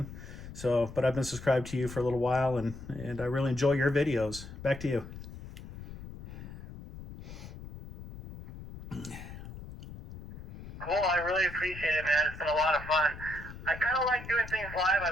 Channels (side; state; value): left; noise; rumble, 12 dB below the sound